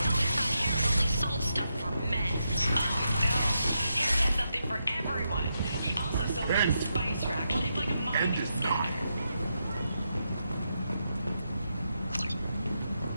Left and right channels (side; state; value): both; inverted; correlation -0.84